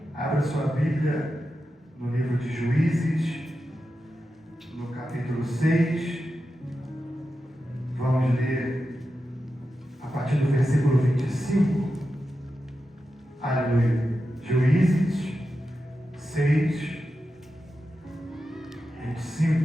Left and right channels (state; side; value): normal; both; correlation 0.90